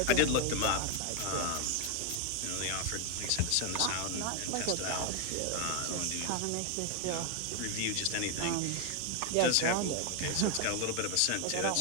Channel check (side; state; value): both; different; correlation 0.01